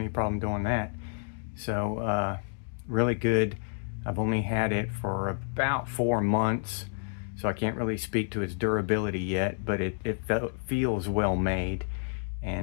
problem doing that. So really good. I've only had it for about 4 months, so I can't really speak to its durability yet, but it feels well made,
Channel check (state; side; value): silent; right; digital silence